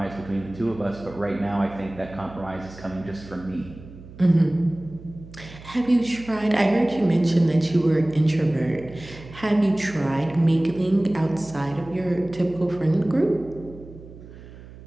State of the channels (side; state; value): right; noise; hum, 17 dB below the sound